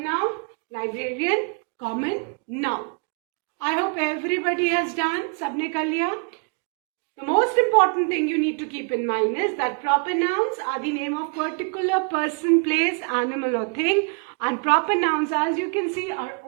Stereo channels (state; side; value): quieter; left; 36.8 dB